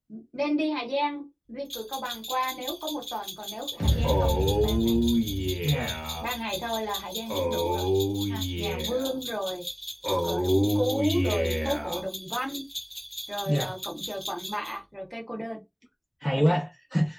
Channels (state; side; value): identical; both; correlation 1.00